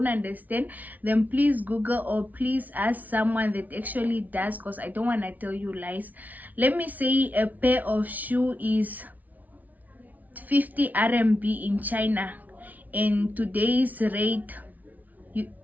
understand, then please Google or please ask someone that actually does, because I don't want to tell you lies. Let me say a pair of shoe is 50 RMB in China, and today's rate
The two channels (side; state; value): left; late; 0.076 ms